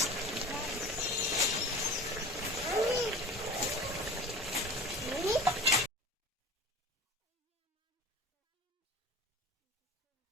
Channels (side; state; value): both; normal; correlation 0.39